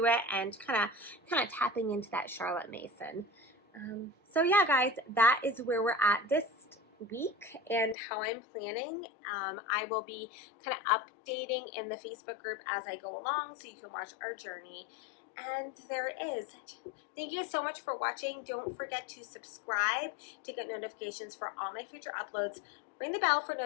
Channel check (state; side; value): drops out; right; at 8.0 s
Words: it, and kind of tapping into that Charlotte Mason So yeah, guys, that is where we're at this week and how I'm planning. I will be kind of updating in the Facebook group as I go along so you can watch our journey. And there it is. Thank you so much for watching. Don't forget to subscribe to get notifications for all my future uploads. Ring the bell for